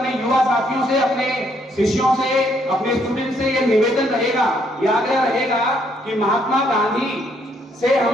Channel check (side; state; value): both; normal; correlation 0.70